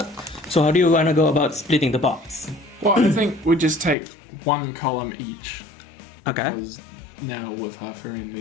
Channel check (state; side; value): drops out; right; at 4.0 s